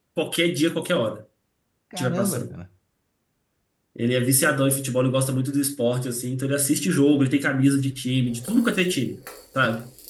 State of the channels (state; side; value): identical; both; correlation 1.00